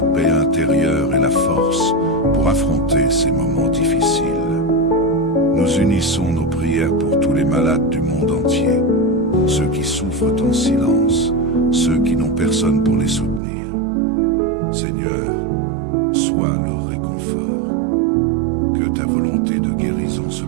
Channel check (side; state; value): left; drops out; at 13.4 s